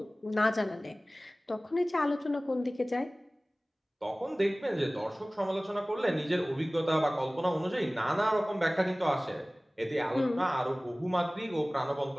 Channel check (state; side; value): normal; both; correlation 0.98